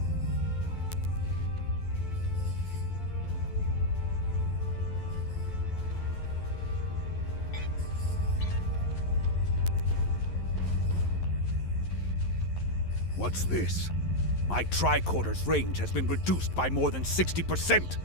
What's this? My tricorder's range has been reduced by more than 60%.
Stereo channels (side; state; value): right; late; 11 ms